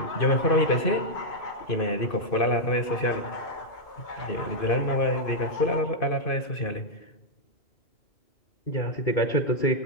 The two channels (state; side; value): late; right; 2.5 ms